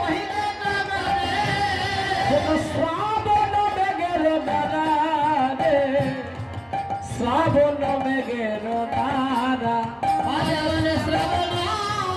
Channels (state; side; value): identical; both; correlation 1.00